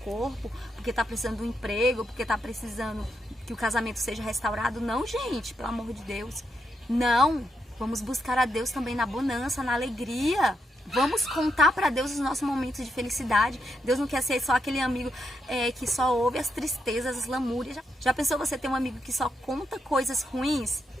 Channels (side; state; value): both; normal; correlation 0.82